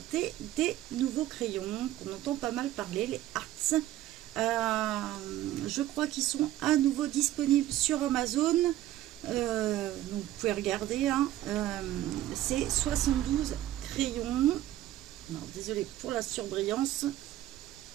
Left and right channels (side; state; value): left; quieter; 14.0 dB